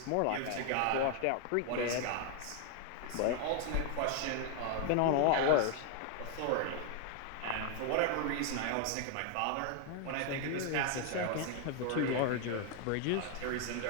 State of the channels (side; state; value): both; different; correlation 0.00